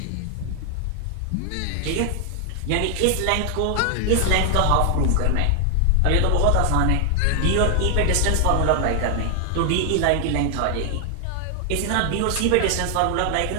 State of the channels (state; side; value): different; both; correlation 0.00